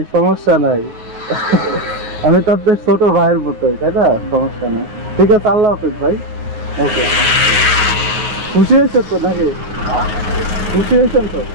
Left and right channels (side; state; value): left; late; 9.2 ms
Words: সমস্যা নাই। আমি তো আপনার ছোট ভাইয়ের মতোই, তাই না, সমস্যা নাই। ঠিক আছে, আল্লাহ হাফেজ ভাই। ওকে, খুশি হয়েছেন তো নাকি? খুশি হয়েছেন তো?